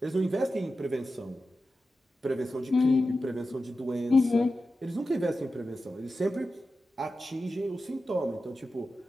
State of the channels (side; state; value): both; normal; correlation 0.92